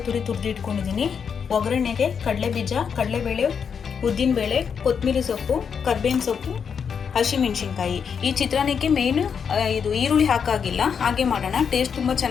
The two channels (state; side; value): quieter; right; 6.8 dB